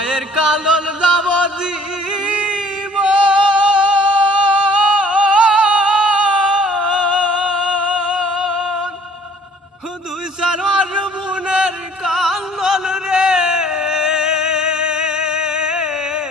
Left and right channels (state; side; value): normal; both; correlation 0.55